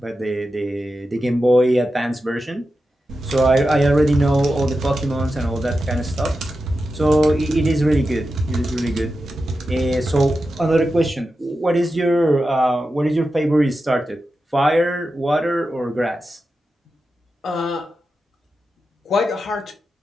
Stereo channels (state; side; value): normal; both; correlation 0.90